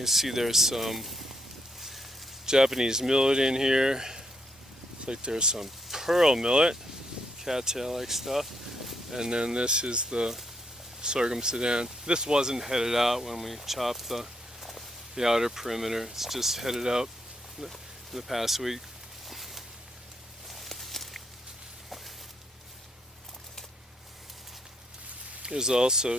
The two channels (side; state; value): both; normal; correlation 0.75